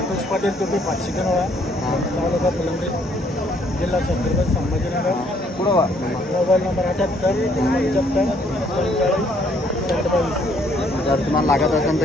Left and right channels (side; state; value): both; normal; correlation 0.66